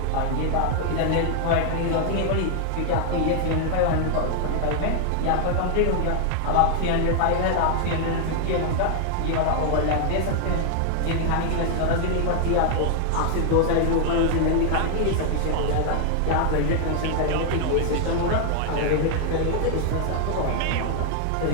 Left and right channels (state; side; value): different; both; correlation 0.00